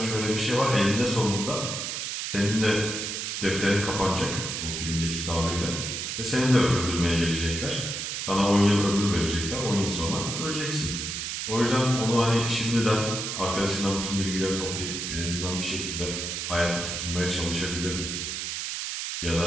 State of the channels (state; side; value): noise; right; hiss, 4 dB below the sound